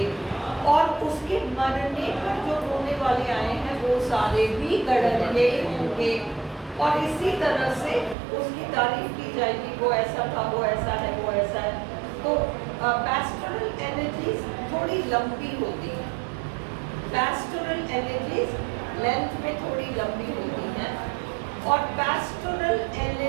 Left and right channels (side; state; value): left; drops out; at 8.2 s